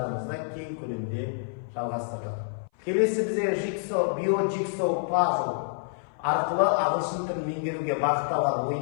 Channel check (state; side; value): silent; right; 57 dB below the other